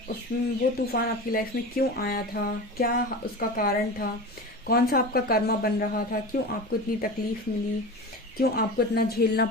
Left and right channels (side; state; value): both; normal; correlation 0.30